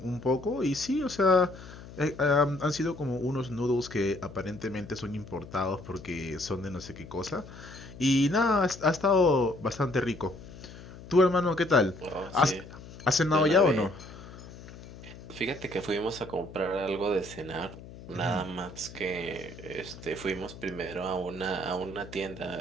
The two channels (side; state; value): left; noise; hum, 16 dB below the sound